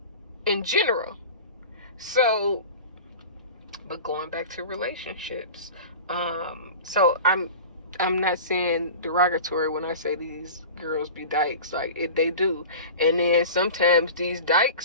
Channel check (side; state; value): both; inverted; correlation -0.35